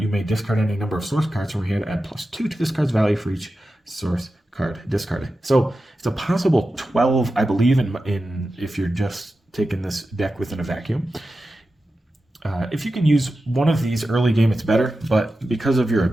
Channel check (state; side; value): normal; both; correlation 0.92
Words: may discard any number of source cards from your hand, add +2 to this card's value for each source card discarded. So, it's a possible 12, I believe, in if you're just taking this deck within a vacuum. If you can use one of these early game, it's better, but because of your